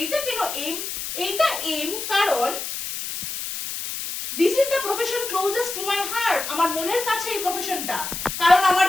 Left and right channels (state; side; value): noise; left; hiss, 6 dB below the sound